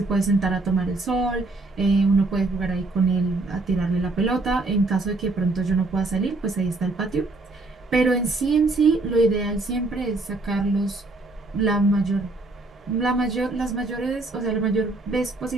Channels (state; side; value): quieter; left; 3.1 dB